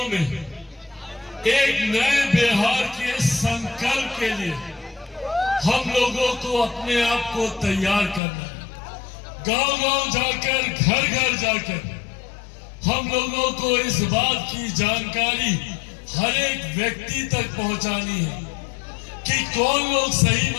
में एक नए बिहार के संकल्प के लिए हम लोगों को अपने आप को तैयार करना है। गांव-गांव जाकर, घर-घर जाकर हम लोगों को इस बात की जानकारी हर एक व्यक्ति तक पहुंचानी है कि कौन लोग सही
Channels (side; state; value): right; drops out; at 8.2 s